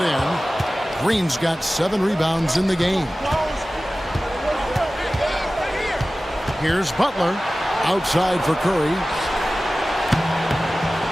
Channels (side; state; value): both; normal; correlation 0.96